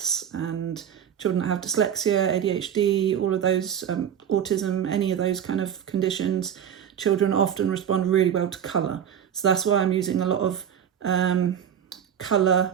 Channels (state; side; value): quieter; left; 9.1 dB